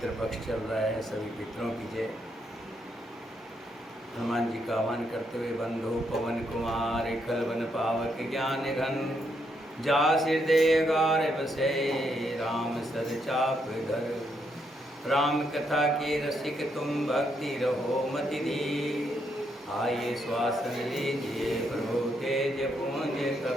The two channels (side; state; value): both; normal; correlation 0.77